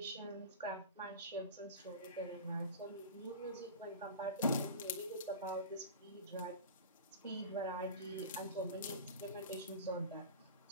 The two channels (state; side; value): inverted; both; correlation -0.32